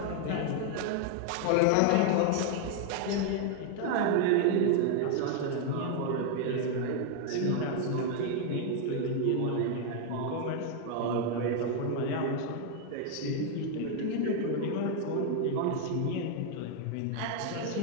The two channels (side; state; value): both; different; correlation 0.00